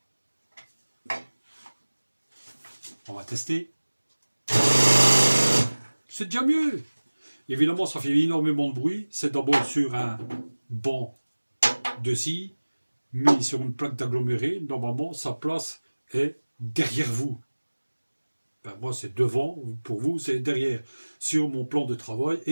On va tester. C'est déjà mieux. Évidemment, ça fait énormément de bruit. C'est d'abord sur un banc de scie, mis sur une plaque d'aggloméré. Normalement, sa place est derrière vous. Ben, moi, c'est devant. Pour vous, c'est derrière. Sur mon plan de travail,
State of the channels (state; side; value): inverted; both; correlation -1.00